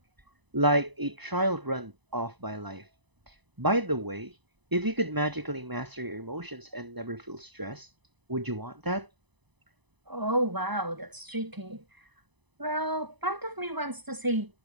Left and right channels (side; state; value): left; late; 1.0 ms